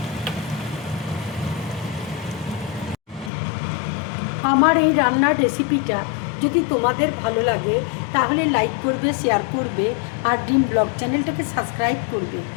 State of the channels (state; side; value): drops out; right; at 3.3 s